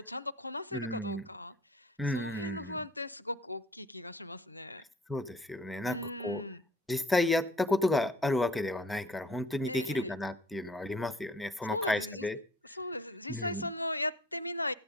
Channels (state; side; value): normal; both; correlation 0.49